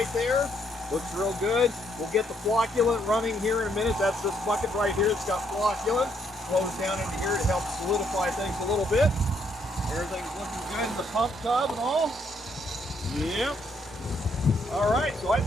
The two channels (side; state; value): both; normal; correlation 0.72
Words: there. Looks real good. We'll get the flocculant running here in a minute. That's this bucket right here. It's got flocculant. Flows down into here to help solidify things a little bit. Everything's looking good in the pump tub and all. Yep. All right, so I